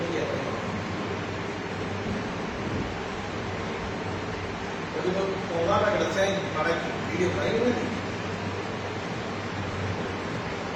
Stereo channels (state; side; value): identical; both; correlation 1.00